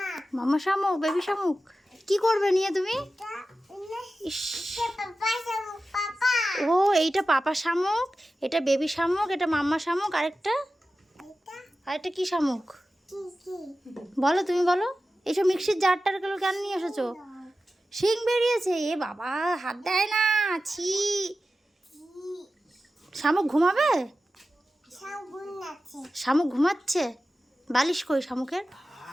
মামা শামুক, বেবি শামুক। কি করবে নিয়ে তুমি? ইস, পাপা শামুক, পাপা। ও এইটা পাপা শামুক, এটা বেবি শামুক, এটা মাম্মা শামুক, এটা আরেকটা কি শামুক কি কি? বলো, তুমি বলো। এইসব মিক্সির জারটারগুলো কেন নিয়ে এসেছো? শিং বেরিয়েছে, এ বাবা, হাত দেয় না, ছি। শামুক ঘুমাবে? শামুক নাচে। শামুক ঘুমাচ্ছে। বালিশ কই শামুকের?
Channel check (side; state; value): both; normal; correlation 0.93